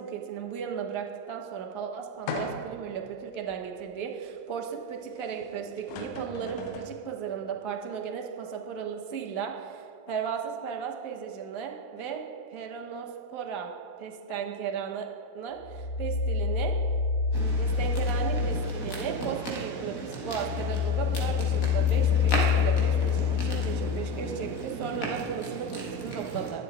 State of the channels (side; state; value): right; late; 16 ms